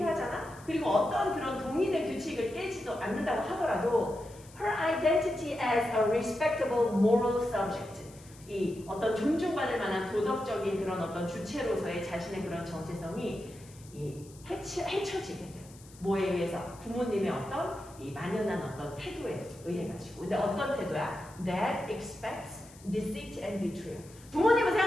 그리고 어떤 그런 동의된 규칙을 깨지도 않는다고 하더라도 her identity as a respectable moral subject. 이 어떤 존중받을 만한 도덕적인 그런 어떤 주체로서의 자신의 그런 정체성이 해쳐지게 돼. 뭐에 의해서? 부모님의 어떤 이 만연한 어떤 태도에 의해 가지고. 근데 어떤 태도야? That expects deceit and betrayal. 부모님은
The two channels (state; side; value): noise; left; hiss, 23 dB below the sound